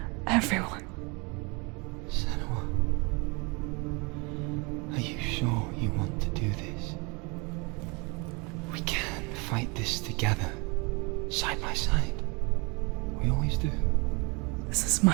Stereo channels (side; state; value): left; quieter; 29.4 dB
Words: Everyone. Senua, are you sure you want to do this? We can fight this together, side by side. We always do. This is